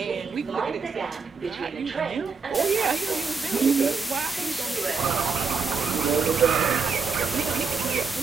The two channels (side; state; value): left; quieter; 5.0 dB